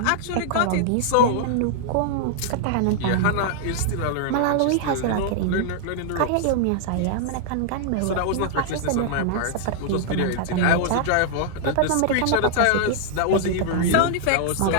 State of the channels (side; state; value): both; different; correlation -0.01